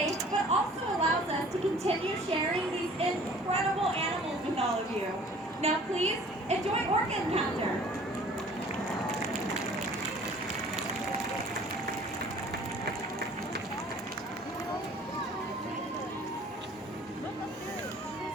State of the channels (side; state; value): both; normal; correlation 0.50